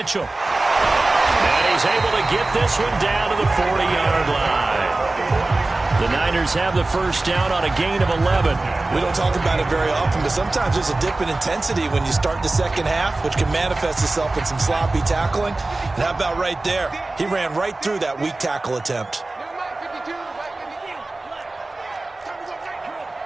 And he's able to get this one down to the 40-yard line. The Niners have the first down on a gain of 11. We don't talk about it very often, but sometimes there's a dip in intensity when you start the second half, which can manifest itself in some sloppy tackling. And how about right there? He ran right through that weak tackle attempt.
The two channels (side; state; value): left; quieter; 3.0 dB